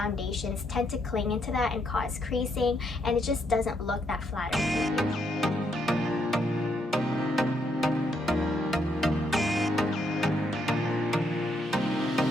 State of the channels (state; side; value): normal; both; correlation 0.76